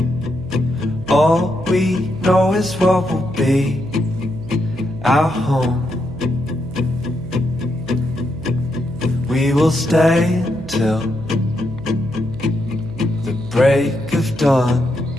All we know is what will be our home. We will stay until the break of dawn.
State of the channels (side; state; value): right; noise; hum, 14 dB below the sound